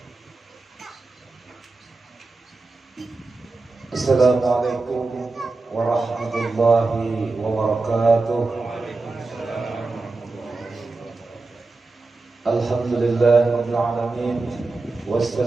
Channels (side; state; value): left; quieter; 3.6 dB